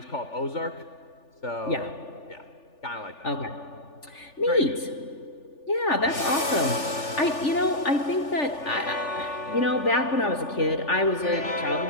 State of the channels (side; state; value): right; late; 3.4 ms